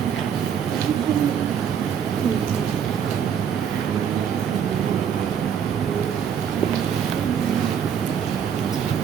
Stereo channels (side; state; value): left; quieter; 8.1 dB